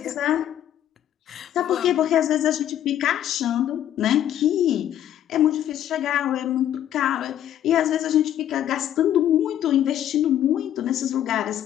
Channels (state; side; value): quieter; right; 11.2 dB